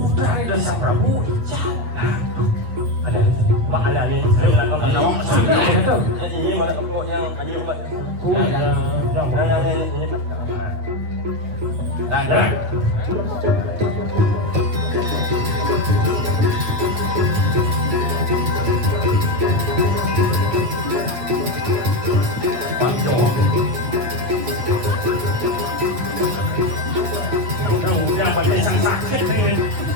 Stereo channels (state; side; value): late; left; 8.7 ms